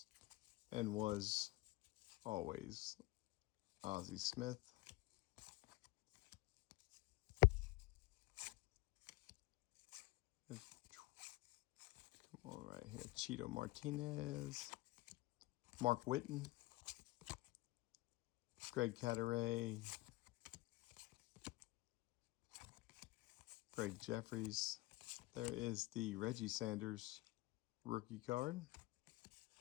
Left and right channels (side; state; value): right; quieter; 19.7 dB